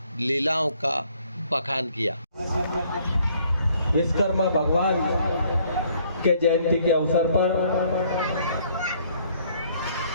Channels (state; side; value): inverted; both; correlation -0.63